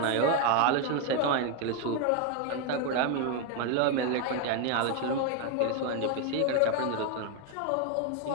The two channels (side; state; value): both; different; correlation 0.01